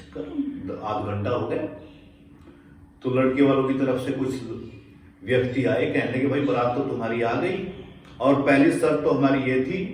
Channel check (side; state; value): both; identical; correlation 1.00